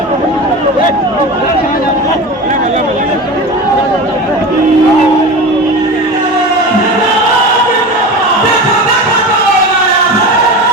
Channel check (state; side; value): normal; both; correlation 0.29